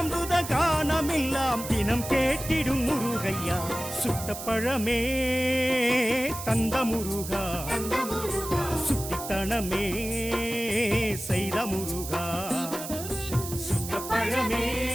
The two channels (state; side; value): noise; right; hiss, 9 dB below the sound